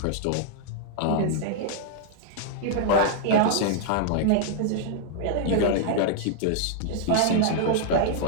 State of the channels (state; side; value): different; both; correlation -0.01